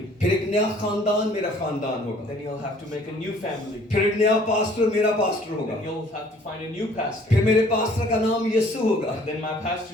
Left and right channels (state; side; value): normal; both; correlation 0.56